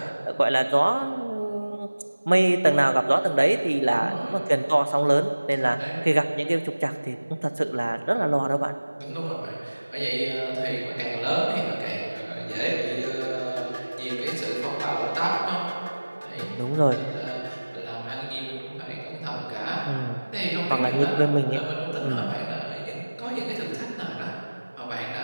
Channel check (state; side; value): inverted; both; correlation -1.00